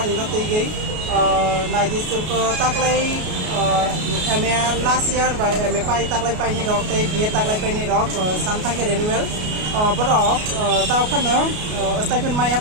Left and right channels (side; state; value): left; late; 33 ms